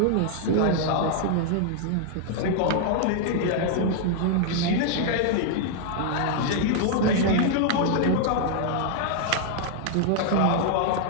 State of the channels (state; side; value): different; both; correlation 0.00